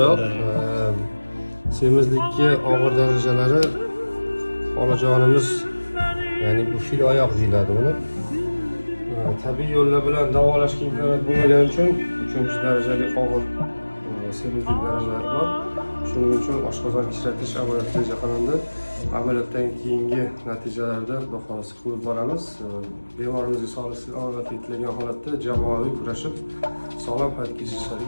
Semizlikka og'ir darajalari xolajonimiz, ya'ni bu fil oyoq deyiladi buni. Tabiiy yo'llar bilan davolashga imkoniyat bo'lmagani uchun 3-darajali og'ir semizlik darajalari bor. Shuning uchun oshqozon kichratish amaliyoti reja qilindi. Amaliyotdan keyingi natijalarda xudo xolasa ko'rib boramiz. Bemorimizga sog'lik yetlagan holatda jamoaviy kurashib sog'lom hayot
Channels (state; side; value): inverted; both; correlation -1.00